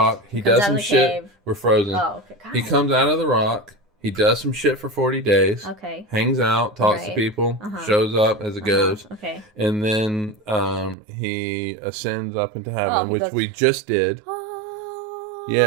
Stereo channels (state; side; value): drops out; left; at 11.0 s